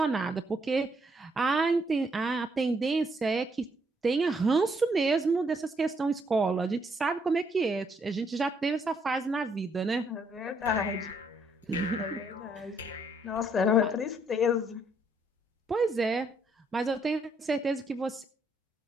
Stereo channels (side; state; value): both; normal; correlation 0.72